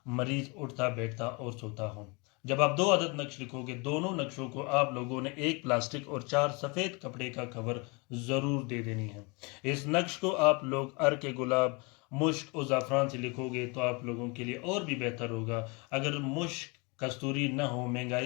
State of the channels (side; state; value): right; quieter; 29.4 dB